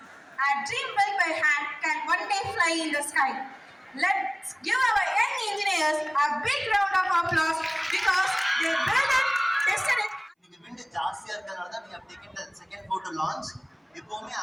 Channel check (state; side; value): identical; both; correlation 1.00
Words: a dream built by hand, can one day fly in the sky. Let's give our young engineers a big round of applause because they built it, tested it. இன்னைக்கு விண்டு ஜாஸ்தியா இருக்கிறதுனால தான் we have taken the second floor to launch. எப்பவுமே